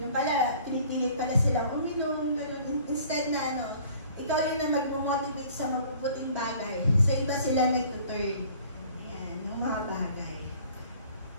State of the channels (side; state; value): both; inverted; correlation -0.52